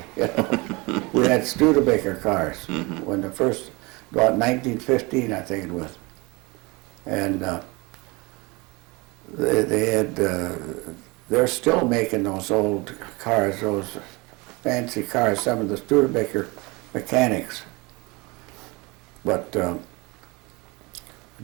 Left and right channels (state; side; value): quieter; left; 25.6 dB